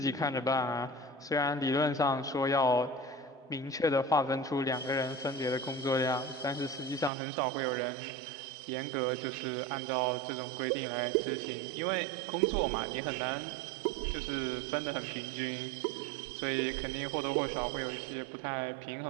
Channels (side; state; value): left; drops out; at 7.1 s